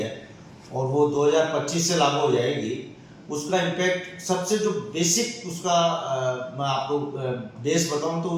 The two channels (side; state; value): both; identical; correlation 1.00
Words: और वो 2025 से लागू हो जाएगी। उसका इम्पैक्ट सबसे जो बेसिक उसका मैं आपको बेस बताऊं